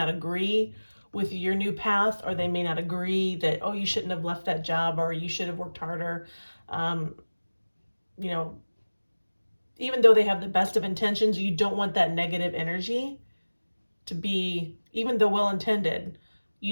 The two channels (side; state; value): both; inverted; correlation -1.00